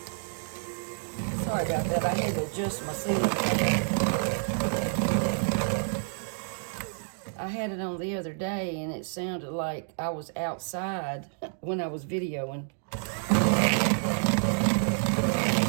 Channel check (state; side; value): silent; left; digital silence